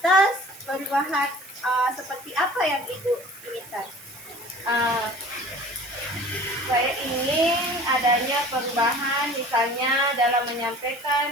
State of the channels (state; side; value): noise; right; hiss, 20 dB below the sound